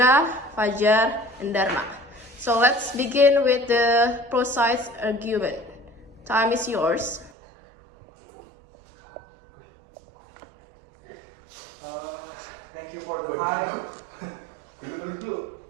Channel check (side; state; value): left; drops out; at 7.3 s